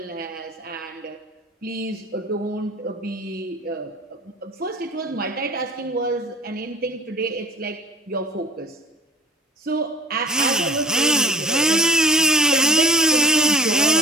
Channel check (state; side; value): normal; both; correlation 0.43